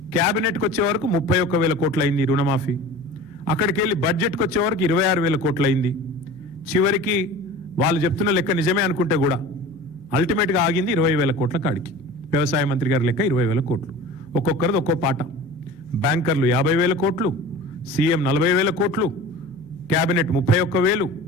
క్యాబినెట్కి వచ్చే వరకు 31,000 కోట్లు అయింది రుణమాఫీ. అక్కడికి వెళ్ళి బడ్జెట్కి వచ్చే వరకు 26,000 కోట్లు అయింది. చివరికి వాళ్ళు చెప్తున్న లెక్క నిజమే అనుకుంటే కూడా అల్టిమేట్గా ఆగింది 20,000 కోట్ల కాడికి. వ్యవసాయ మంత్రి గారి లెక్క 20,000 కోట్లు. ఒక్కొక్కరిది ఒక్కో పాట. బ్యాంకర్లు 50,000 కోట్లు, సీఎం 40,000 కోట్లు, క్యాబినెట్ 31,000,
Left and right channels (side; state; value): left; noise; hum, 29 dB below the sound